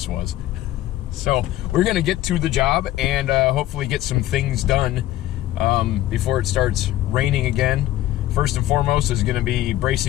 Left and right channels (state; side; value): quieter; right; 14.5 dB